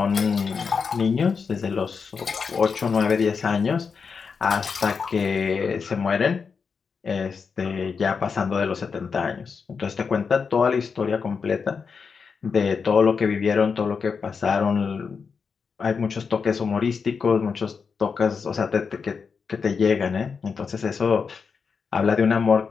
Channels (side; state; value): right; quieter; 5.6 dB